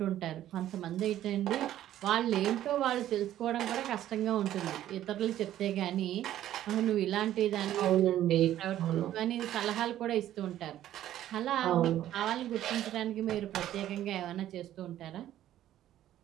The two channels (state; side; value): quieter; left; 12.5 dB